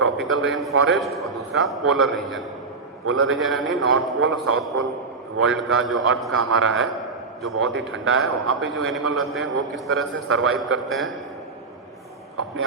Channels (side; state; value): left; quieter; 4.3 dB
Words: रेन फॉरेस्ट और दूसरा पोलर रीजन। पोलर रीजन यानी नॉर्थ पोल और साउथ पोल वर्ल्ड का, जो अर्थ का हमारा है, जो बहुत ही ठंडा है, वहाँ पे जो एनिमल रहते हैं वो किस तरह से सर्वाइव करते हैं, अपने